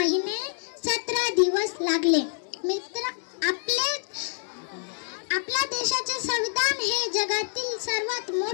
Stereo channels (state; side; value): silent; right; digital silence